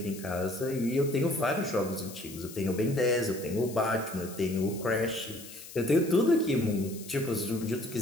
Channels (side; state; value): left; noise; hiss, 15 dB below the sound